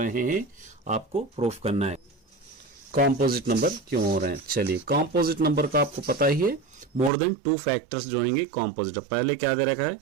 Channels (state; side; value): drops out; left; at 7.1 s